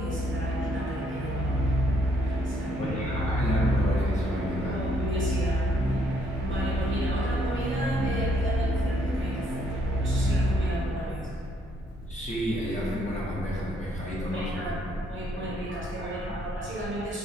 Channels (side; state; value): both; normal; correlation 0.69